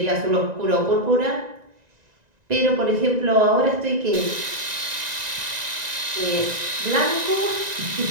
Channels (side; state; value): left; late; 1.9 ms